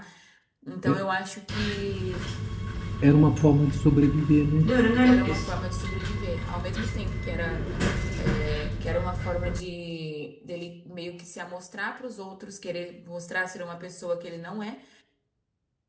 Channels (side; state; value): both; identical; correlation 1.00